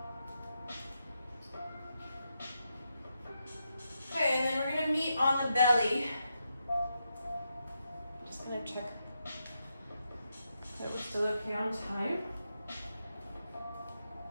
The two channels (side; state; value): both; inverted; correlation -0.84